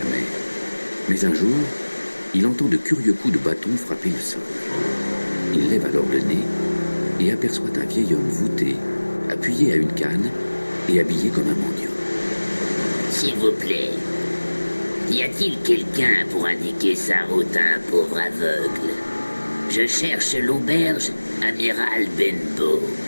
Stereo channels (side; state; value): both; inverted; correlation -1.00